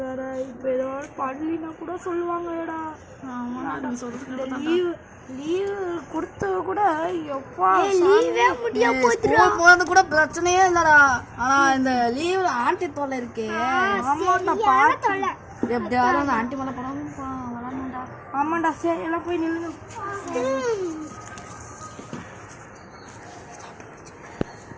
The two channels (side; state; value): both; identical; correlation 1.00